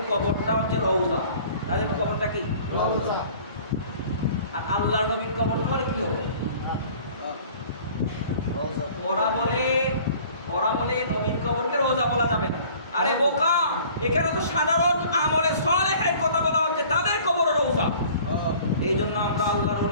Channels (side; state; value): both; inverted; correlation -0.50